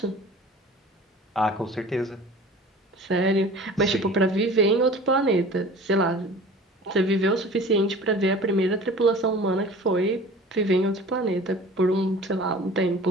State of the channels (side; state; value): both; normal; correlation 0.42